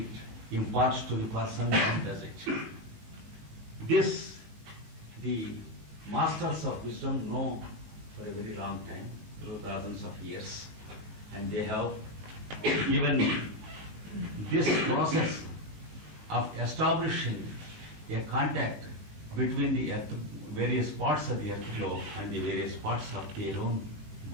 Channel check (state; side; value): late; left; 19 ms